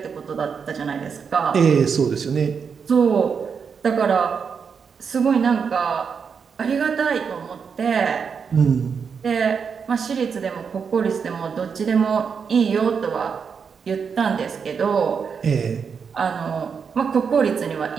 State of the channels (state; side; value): quieter; left; 6.2 dB